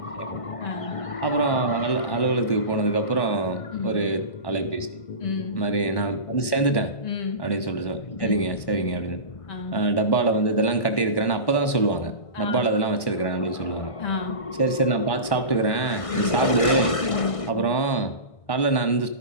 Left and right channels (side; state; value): right; late; 1.1 ms